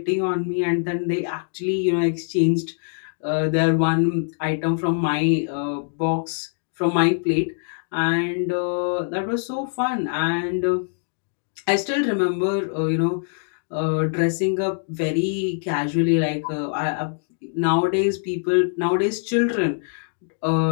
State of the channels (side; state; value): right; silent; 61 dB below the other